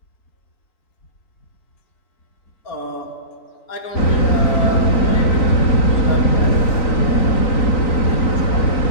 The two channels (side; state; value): right; late; 3.9 ms